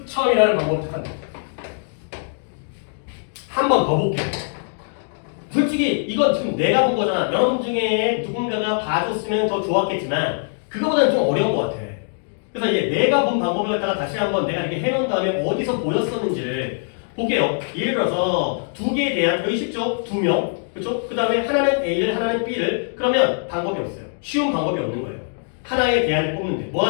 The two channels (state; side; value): silent; right; 64 dB below the other